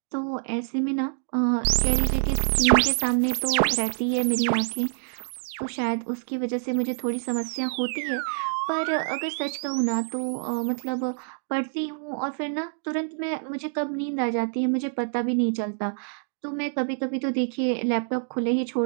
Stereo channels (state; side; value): silent; left; 61 dB below the other